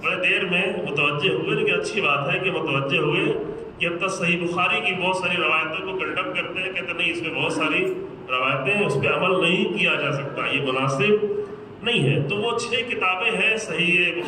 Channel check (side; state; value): both; identical; correlation 1.00